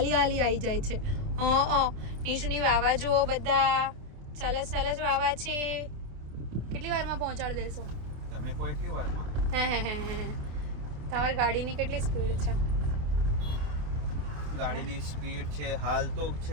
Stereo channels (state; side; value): late; left; 28 ms